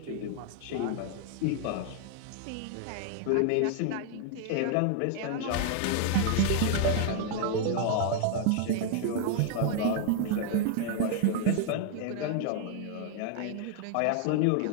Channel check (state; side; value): different; both; correlation 0.00